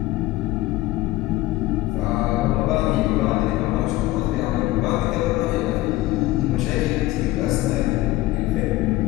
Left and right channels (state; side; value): quieter; right; 17.7 dB